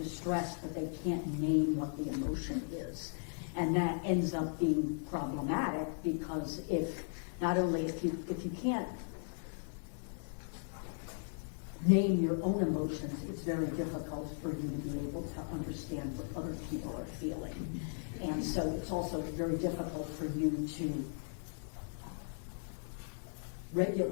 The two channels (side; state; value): right; silent; digital silence